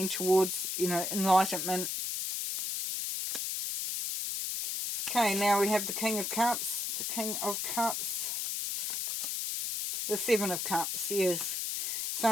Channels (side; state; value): left; noise; hiss, 1 dB below the sound